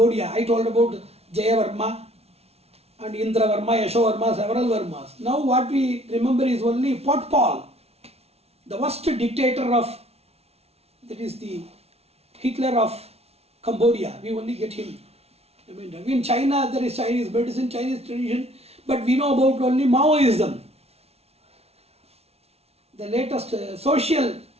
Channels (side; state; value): left; late; 0.30 ms